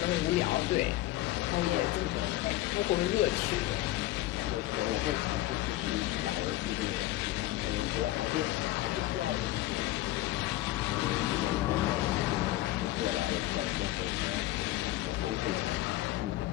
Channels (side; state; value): right; quieter; 16.3 dB